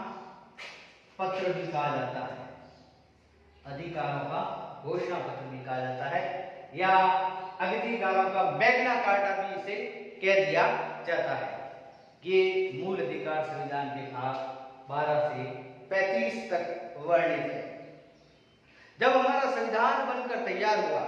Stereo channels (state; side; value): identical; both; correlation 1.00